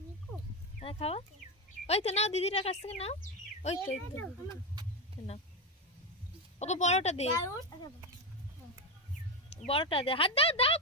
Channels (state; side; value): normal; both; correlation 0.12